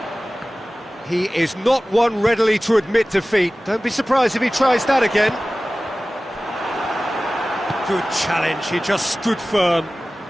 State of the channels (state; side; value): normal; both; correlation 0.97